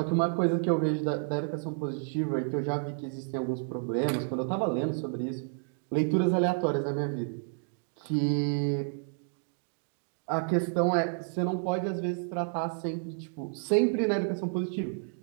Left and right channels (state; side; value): silent; left; 57 dB below the other